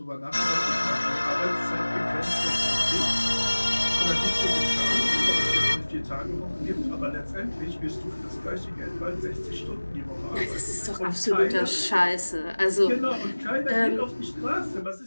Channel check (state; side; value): inverted; both; correlation -1.00